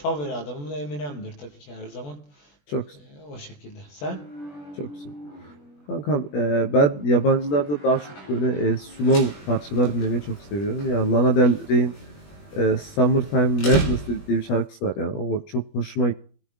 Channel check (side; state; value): right; late; 21 ms